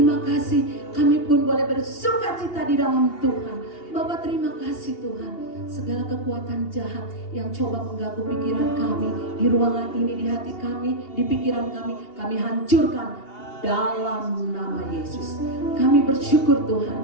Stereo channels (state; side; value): late; right; 2.8 ms